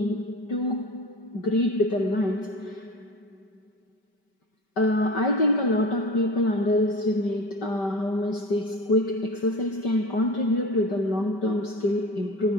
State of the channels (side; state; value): right; late; 5.2 ms